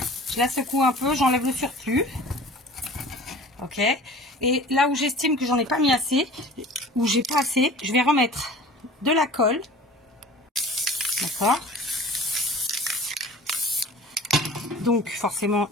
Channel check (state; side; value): normal; both; correlation 0.43